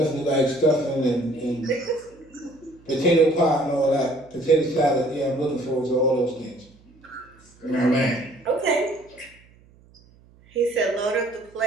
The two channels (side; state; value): right; noise; hum, 28 dB below the sound